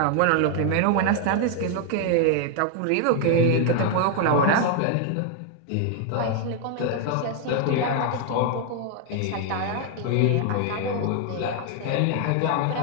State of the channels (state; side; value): different; both; correlation 0.00